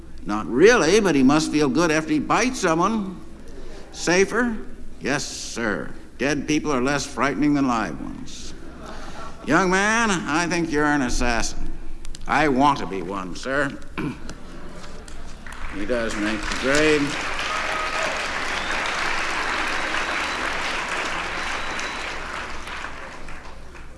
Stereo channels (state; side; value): identical; both; correlation 1.00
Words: Not really, but he must feel good after he bites someone. Safer? Yes, sir. Dead people are less frightening than live ones. Young man, I think you're an assassin. I want to be one, sir. He does make the grade.